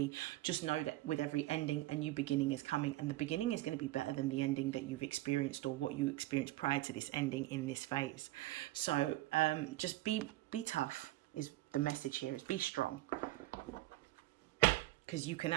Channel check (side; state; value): left; quieter; 17.3 dB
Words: Just know that with every ending, a new beginning is coming, and the beginning is going to be better than the ending that you've experienced or what you experienced prior to this ending in this phase. So just be tough is the message here, is be strong. Because you can